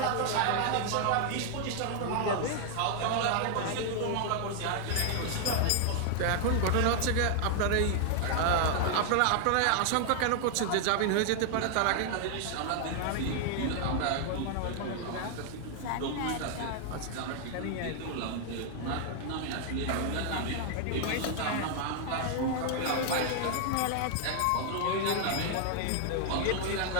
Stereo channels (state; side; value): different; both; correlation 0.00